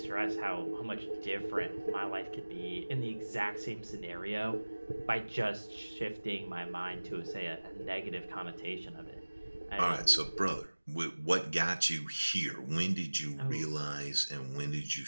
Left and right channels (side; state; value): both; inverted; correlation -1.00